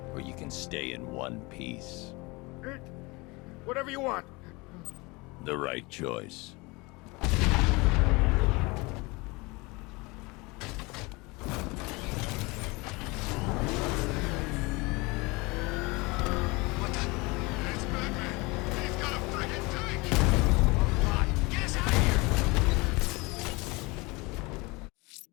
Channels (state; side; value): quieter; right; 25.2 dB